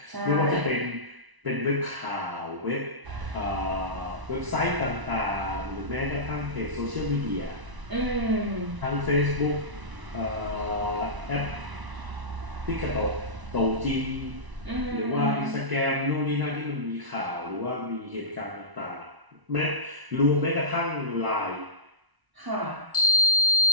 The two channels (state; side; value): late; left; 1.0 ms